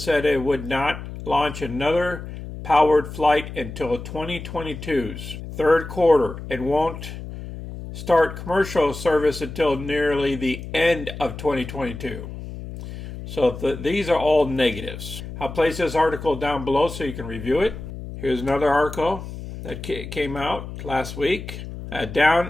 it would not launch another powered flight until 2022's third quarter and won't start commercial service until nearly the end of 2022. So these are all negatives. I'll place this article down below so you can review it. Here's another article that came out last week.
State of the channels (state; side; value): noise; left; hum, 10 dB below the sound